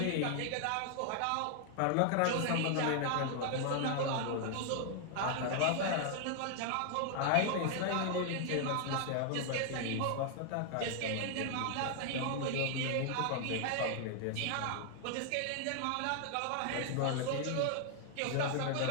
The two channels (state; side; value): different; both; correlation 0.00